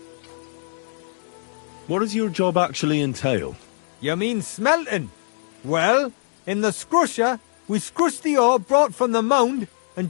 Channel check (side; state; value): right; silent; digital silence